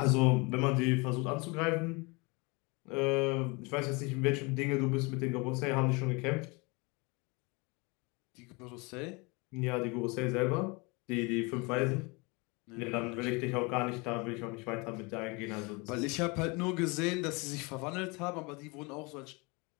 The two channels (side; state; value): right; quieter; 28.1 dB